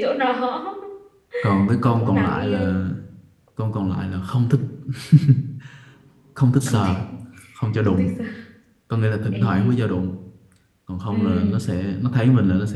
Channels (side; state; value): both; identical; correlation 1.00